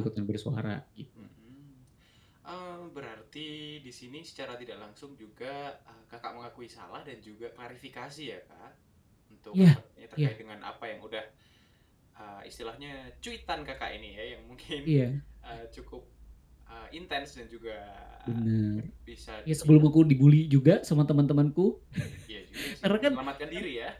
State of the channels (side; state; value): both; identical; correlation 1.00